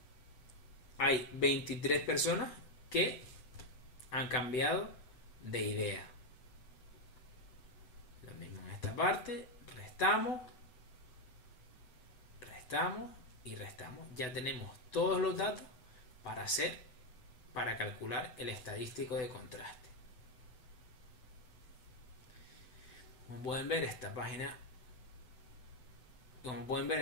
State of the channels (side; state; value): right; late; 7.9 ms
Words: hay 23 personas que han cambiado de idea. Lo mismo en esta parte, restamos y restamos. Ya tenemos todos los datos para calcular el estadístico de contraste. Como pueden ver, en